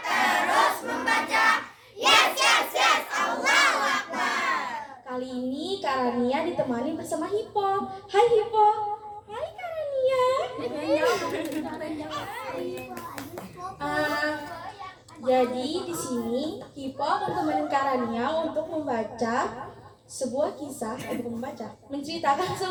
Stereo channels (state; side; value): identical; both; correlation 1.00